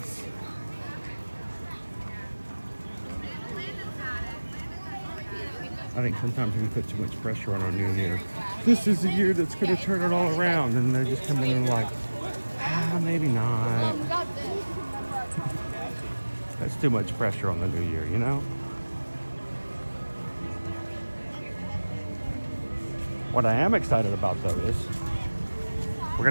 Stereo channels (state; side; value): inverted; both; correlation -1.00